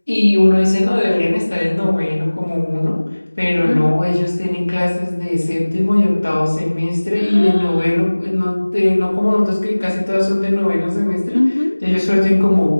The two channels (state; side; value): inverted; both; correlation -1.00